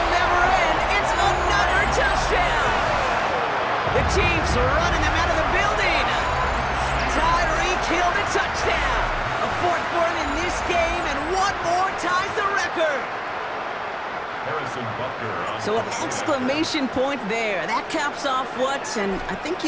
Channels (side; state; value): both; identical; correlation 1.00